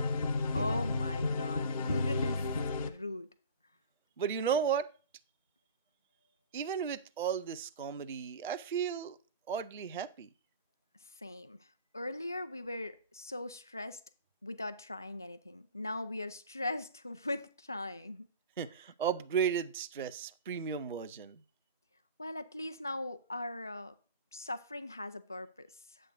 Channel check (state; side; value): inverted; both; correlation -0.41